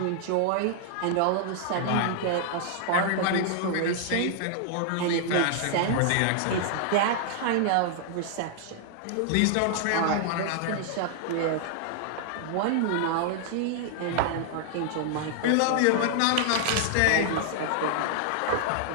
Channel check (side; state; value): both; different; correlation 0.00